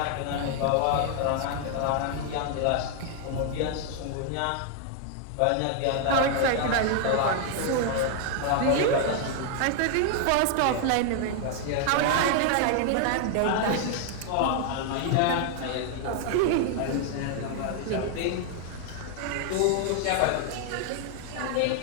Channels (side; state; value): both; different; correlation 0.00